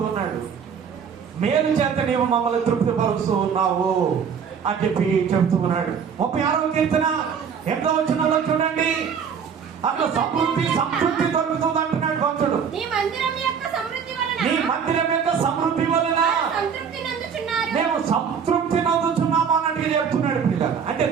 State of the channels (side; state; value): left; quieter; 6.9 dB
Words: ఉన్నాడు. మేలు చేత నీవు మమ్మల్ని తృప్తిపరుస్తూ ఉన్నావు అని చెప్పి చెబుతూ ఉన్నాడు. 36వ కీర్తన 8వ వచనంలో చూడండి, అట్లా సంతృప్తి దొరుకుతుంది అంటున్నాడు భక్తుడు. నీ మందిరం యొక్క సమృద్ధి వలన మేము సంతృప్తి నందుచున్నాము అన్నట్టుగా చెప్తున్నాడు పిల్లలు. అంటే